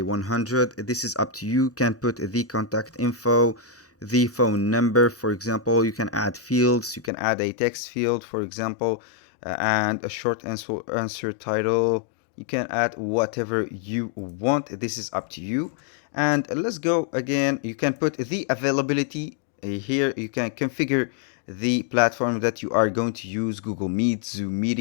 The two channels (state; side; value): drops out; right; at 7.1 s